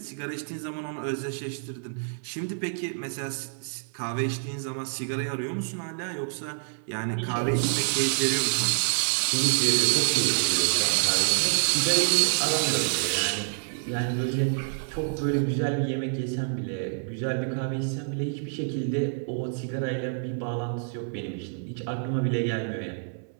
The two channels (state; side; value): silent; left; 60 dB below the other